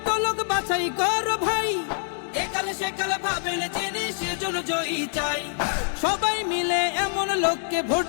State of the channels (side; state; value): right; silent; 59 dB below the other